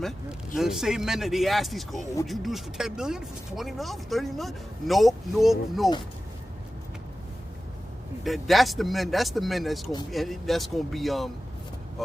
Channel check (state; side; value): normal; both; correlation 0.95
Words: The same men that they ask these, oh, would you do this for 10 million, for 20 million, for 30 million? Nope. That's the men that's gonna be